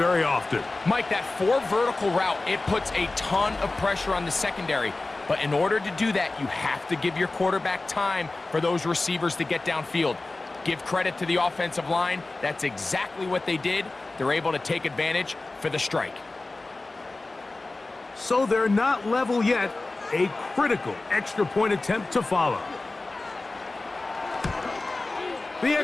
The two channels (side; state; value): right; quieter; 3.2 dB